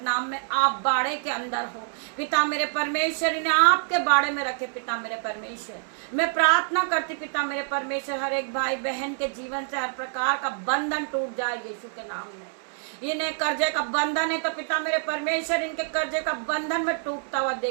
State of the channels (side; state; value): left; silent; digital silence